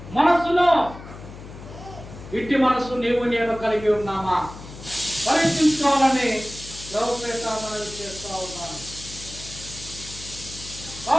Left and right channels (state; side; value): noise; left; hum, 15 dB below the sound